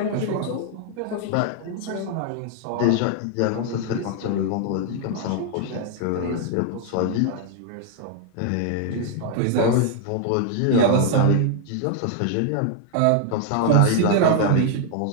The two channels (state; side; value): different; both; correlation 0.00